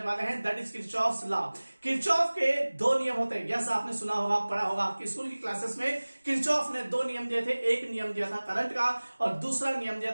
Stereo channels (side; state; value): both; inverted; correlation -1.00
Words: वाले हैं, that is Kirchhoff's law. Kirchhoff के दो नियम होते हैं, यस आपने सुना होगा, पढ़ा होगा आपकी स्कूल की क्लासेस में। किरचॉफ ने दो नियम दिए थे, एक नियम दिया था करंट का और दूसरा नियम